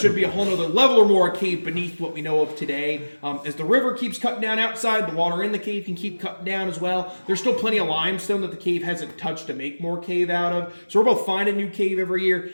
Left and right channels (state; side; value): inverted; both; correlation -1.00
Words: be a whole other level or more of cave beneath what we know of today. As the river keeps cutting down outside, the water in the cave can keep cutting down as well. There's still plenty of limestone that the cave hasn't touched to make more cave out of. So we're both finding new cave every year.